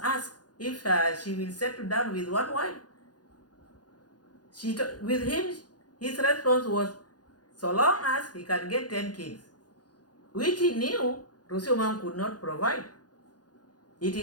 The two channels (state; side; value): late; right; 0.69 ms